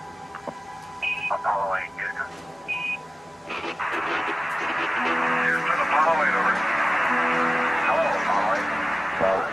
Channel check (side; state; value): both; normal; correlation 0.97